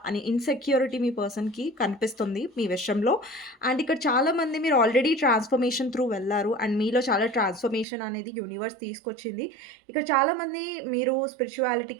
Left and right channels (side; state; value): left; drops out; at 7.9 s